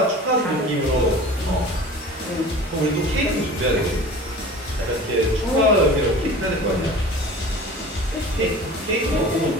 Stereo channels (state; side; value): normal; both; correlation 0.40